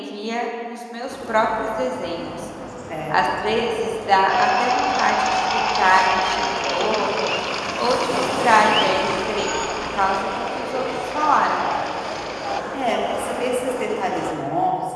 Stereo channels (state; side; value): identical; both; correlation 1.00